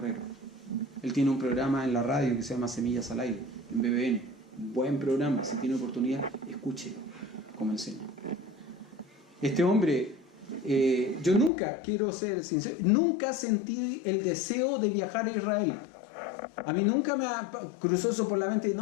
Él tiene un programa en la radio que se llama Semillas al Aire, en BBN. Un buen programa, si tiene oportunidad, escuche cómo enseña. Este hombre, yo nunca, quiero ser sincero, nunca sentí el deseo de viajar a Israel. A mí nunca me cruzó eso por la mente,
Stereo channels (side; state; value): right; drops out; at 11.5 s